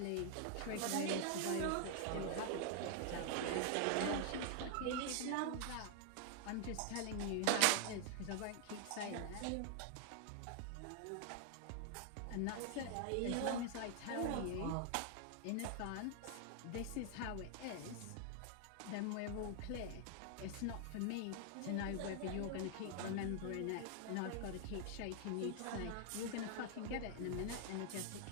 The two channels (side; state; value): both; different; correlation 0.00